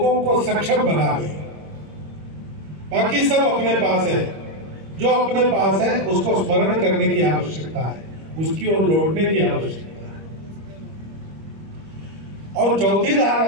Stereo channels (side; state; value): left; late; 26 ms